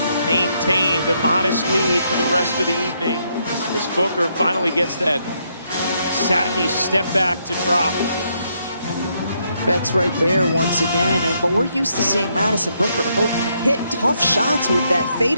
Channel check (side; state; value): both; inverted; correlation -0.76